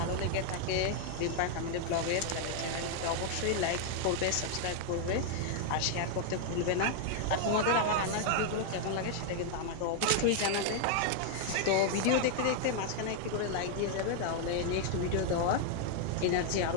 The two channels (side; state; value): both; different; correlation 0.00